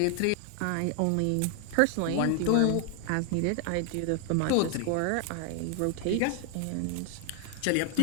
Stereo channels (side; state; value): both; different; correlation 0.00